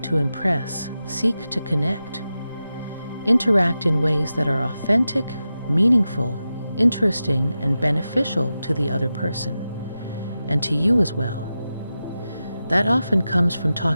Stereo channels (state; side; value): inverted; both; correlation -0.92